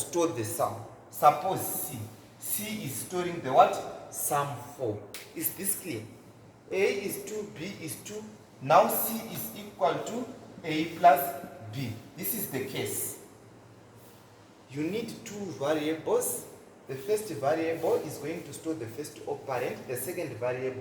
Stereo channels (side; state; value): both; identical; correlation 1.00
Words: the sum. Suppose C. C is storing the what? Sum 4. Is this clear? A is 2, B is 2. Now C is equal to A plus B. This is the case. You need two variables. The first variable is going to store the first operand. The second